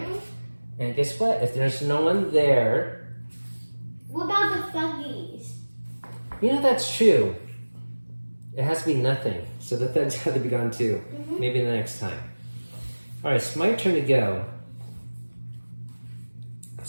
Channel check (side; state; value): both; inverted; correlation -1.00